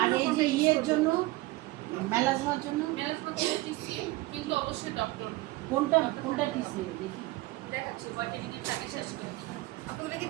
আর জন্য এই যে ইয়ের জন্য মেলাজমার জন্য ম্যানেজমেন্ট হলো টিসিএ, কিন্তু অবশ্যই ডক্টর কোনটা টিসি দেখি? দেখাচ্ছি হোয়াইটেনিং এর টাকা শেষ করে দিই। আপনারা কি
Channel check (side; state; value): left; quieter; 19.7 dB